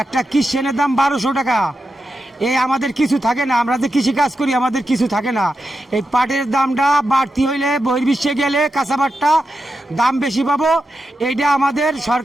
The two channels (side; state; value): both; normal; correlation 0.88